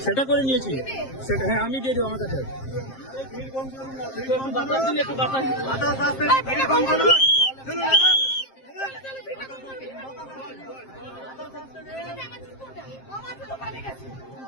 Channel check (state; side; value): late; right; 7.5 ms